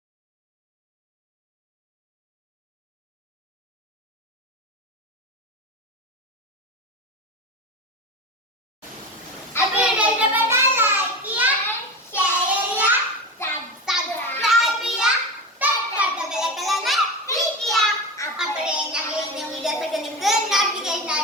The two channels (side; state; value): both; normal; correlation 0.25